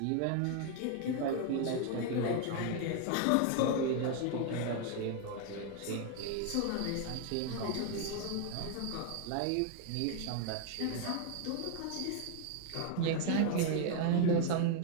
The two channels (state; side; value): different; both; correlation 0.00